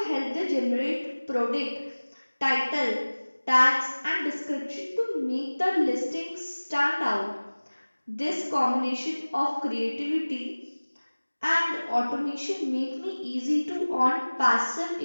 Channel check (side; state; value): both; inverted; correlation -1.00